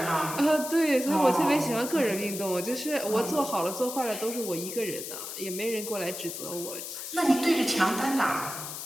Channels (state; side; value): noise; left; hiss, 8 dB below the sound